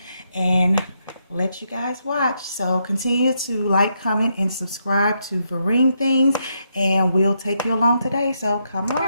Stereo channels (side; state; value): both; inverted; correlation -0.79